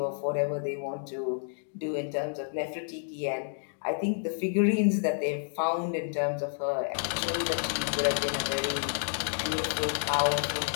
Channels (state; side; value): silent; right; digital silence